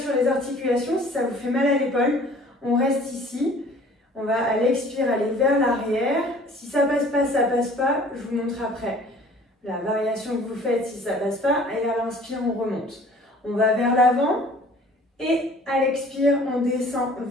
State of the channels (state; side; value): normal; both; correlation 0.51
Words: les articulations. Si ça vous fait mal à l'épaule, on reste ici. On va à l'expire aller vers l'arrière. Si ça passe pas, ça passe pas. Je vous montre après la variation que vous faites si ça passe pas. Et à l'inspire, on remonte. On va vers l'avant et à l'expire, on descend